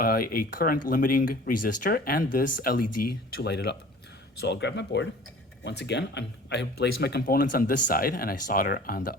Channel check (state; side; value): normal; both; correlation 0.45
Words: current limiting resistor and this LED to light it up. So I'll grab my board. Once again, I have placed my components on this side, and I solder on